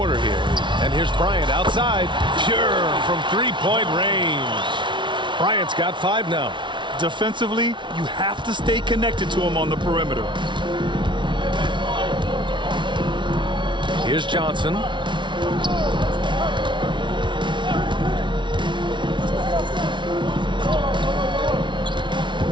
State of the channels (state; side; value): late; left; 0.24 ms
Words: here. And here's Bryant outside. Pure from 3-point range. Bryant's got 5 now. Defensively, you have to stay connected to him on the perimeter. Here's Johnson.